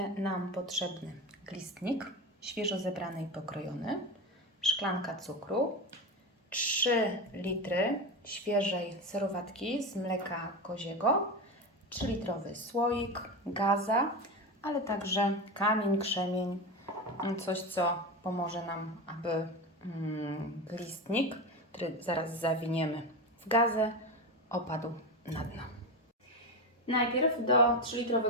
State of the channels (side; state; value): both; normal; correlation 0.20